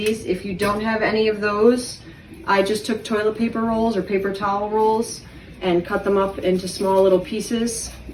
If you don't have any of those, I just took toilet paper rolls or paper towel rolls and cut them up into small little pieces.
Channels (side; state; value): both; identical; correlation 1.00